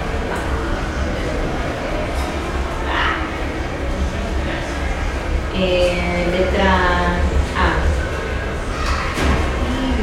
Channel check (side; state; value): both; identical; correlation 1.00